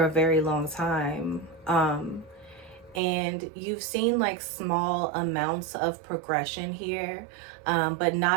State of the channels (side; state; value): left; drops out; at 3.0 s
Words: a very long time. And you've seen like small amounts of progression here, but